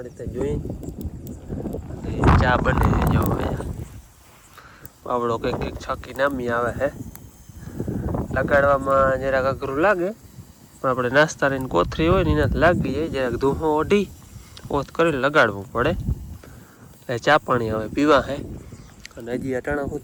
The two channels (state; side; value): identical; both; correlation 1.00